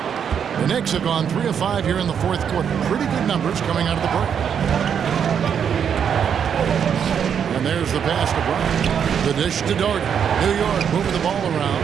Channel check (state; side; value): quieter; left; 7.8 dB